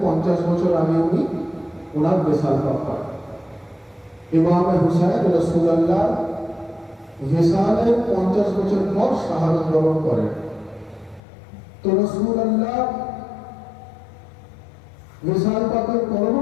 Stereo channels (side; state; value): right; drops out; at 11.2 s